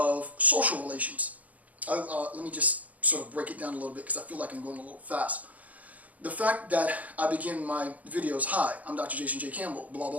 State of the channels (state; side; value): late; left; 0.074 ms